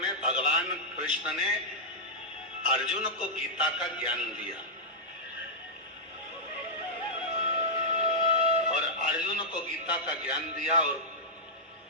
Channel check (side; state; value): both; normal; correlation -0.09